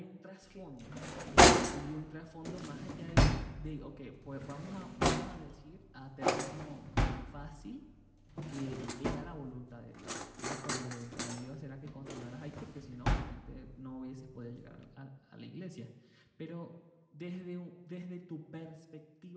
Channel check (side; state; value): both; identical; correlation 1.00